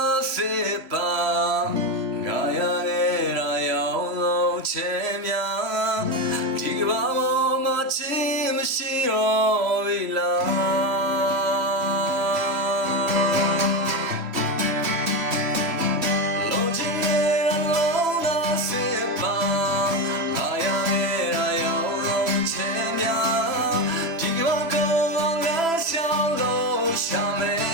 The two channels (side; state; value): left; late; 3.0 ms